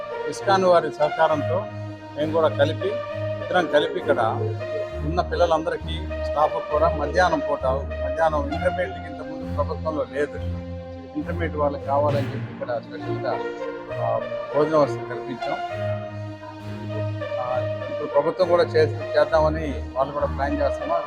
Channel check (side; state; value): both; identical; correlation 1.00